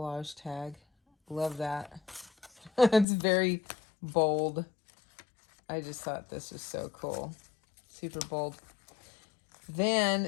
tag. Love that. It's very bold. I just thought this was so cool. Super bold.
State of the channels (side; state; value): right; drops out; at 3.1 s